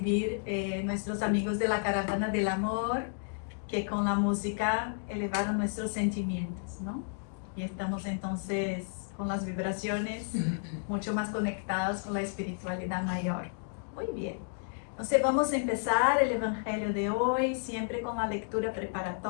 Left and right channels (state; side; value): silent; right; digital silence